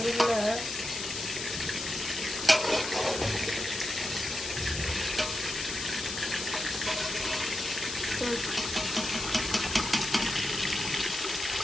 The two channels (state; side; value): noise; left; hiss, 5 dB below the sound